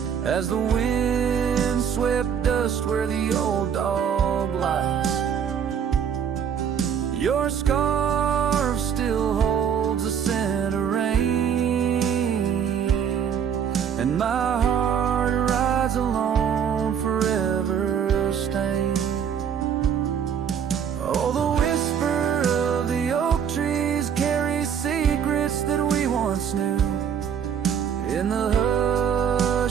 as the wind swept dust where the old dog lies. Your scarf still holds a scent of rain, and my heart rides alone, forever stained. Oh, the whisper of the oak trees carries secrets that we once knew. In the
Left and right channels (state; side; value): quieter; left; 7.9 dB